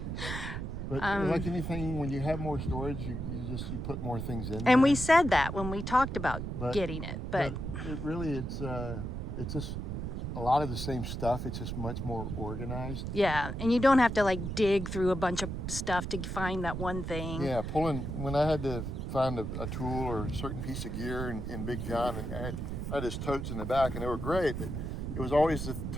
But like anything, when you have more storage, you put more things in. And we said that when we talked about getting it, but it's just a lot of the same stuff. It's just much more organized. Yeah, and you don't have to like dig through a bunch of stuff to find that one thing. Yeah, when I had to find a tool or a certain piece of gear in Big John, and I had his totes in the back, and they were great, but it was always the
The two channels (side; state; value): right; noise; rumble, 4 dB below the sound